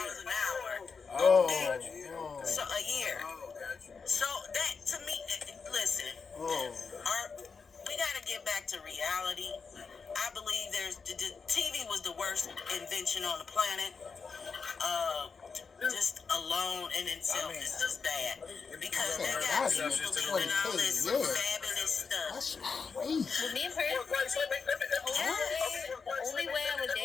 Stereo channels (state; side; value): quieter; right; 5.3 dB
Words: hour. Okay. So a year. So that to me, listen. We gotta get back to reality. I believe the TV was the worst invention on the planet. Just alone in itself is just bad because they got people believing all this fabulous stuff. With me personally, the only way I would